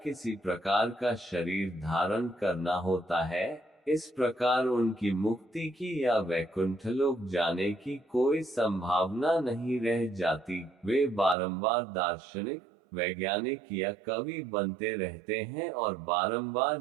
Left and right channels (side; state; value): left; drops out; at 11.4 s